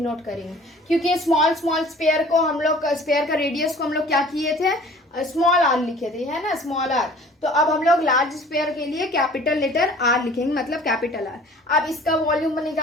करेंगे क्योंकि स्मॉल स्पेयर को हम लोग स्पेयर का रेडियस को हम लोग क्या किए थे स्मॉल आर लिखे थे, है ना, स्मॉल आर। तो अब हम लोग लार्ज स्फीयर के लिए कैपिटल लेटर आर लिखेंगे, मतलब कैपिटल आर। अब इसका वॉल्यूम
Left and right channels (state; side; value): normal; both; correlation 0.49